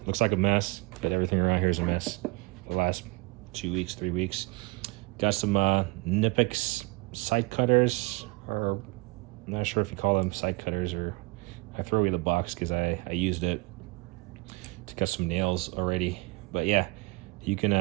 Looks like a mess, but everything around here is a mess. The last 2 weeks, 3 weeks. Got some Nipix side cutters, or I'm not sure if you call them side cutters, or I throw away the box because I used it to cut some nails already. But yeah, you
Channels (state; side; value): quieter; left; 25.8 dB